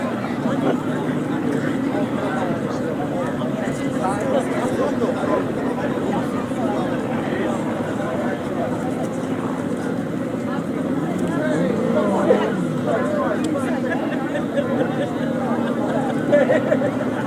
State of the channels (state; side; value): identical; both; correlation 1.00